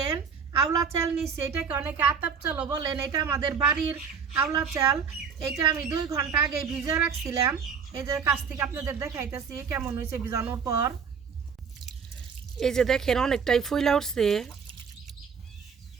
আওলা চাল নিচ্ছি, এটাকে অনেকে আতাপ চালও বলেন। এটা আমাদের বাড়ির আওলা চাল। এটা আমি 2 ঘন্টা আগে ভিজে রাখছিলাম। এই যে কাছ থেকে আপনাদের দেখাইতেছি কেমন হয়েছে ভিজানোর পর। এই যে দেখেন অনেকটাই ফুইলা উঠছে।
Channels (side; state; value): left; quieter; 6.3 dB